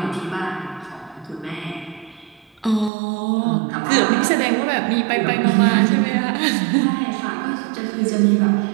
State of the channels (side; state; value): left; drops out; at 2.9 s